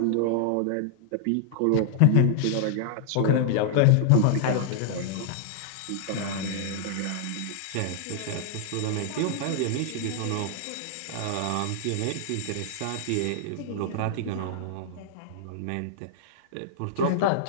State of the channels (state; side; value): different; both; correlation -0.01